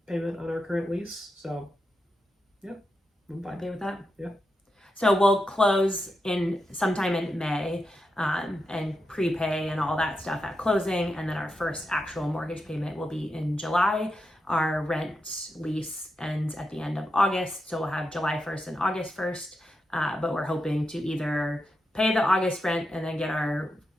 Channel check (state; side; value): normal; both; correlation 0.87